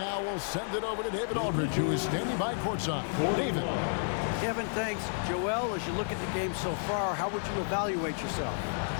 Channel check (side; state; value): right; silent; digital silence